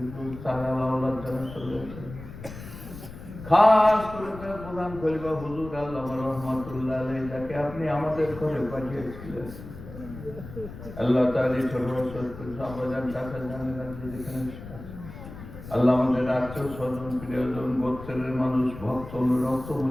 সালাহ আল্লাহ জানা চলেছে। খাস করে তার প্রধান খলিফা হুজুর আল্লামা রহমাতুল্লাহ আলাইহি যাকে আপনি আমাদের ঘরে পাঠিয়েছিলেন। আল্লাহ তাআলা ছোট ছোট সাহাবাজান চাচা জানেন যেখানে আল্লাহ আমাদের আত্মীয় স্বজন প্রিয়জন গোত্রের মানুষ ভক্ত রক্ত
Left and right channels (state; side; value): noise; left; rumble, 13 dB below the sound